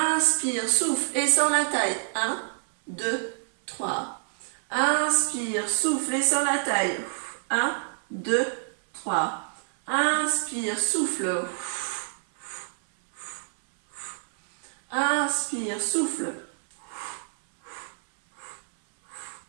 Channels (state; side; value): silent; left; 60 dB below the other